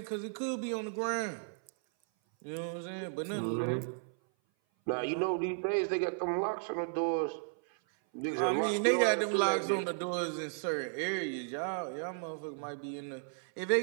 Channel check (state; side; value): silent; left; 55 dB below the other